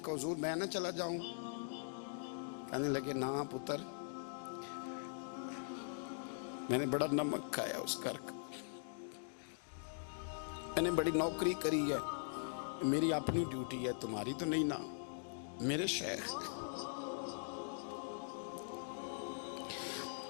हुजूर मैं ना चला जाऊं? कहने लगे ना पुत्र, मैंने बड़ा नमक खाया उस घर का, मैंने बड़ी नौकरी करी है, मेरी अपनी ड्यूटी है, तुम्हारी तो नहीं ना। मेरे शेख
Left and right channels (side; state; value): right; silent; digital silence